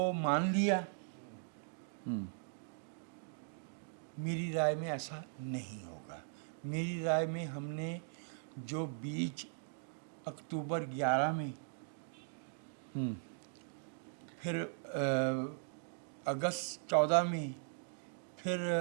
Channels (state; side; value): silent; left; digital silence